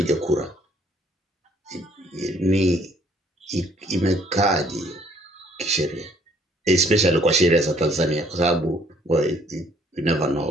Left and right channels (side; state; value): both; normal; correlation 0.63